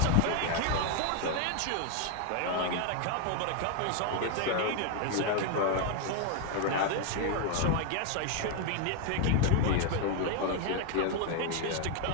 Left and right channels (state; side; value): different; both; correlation 0.01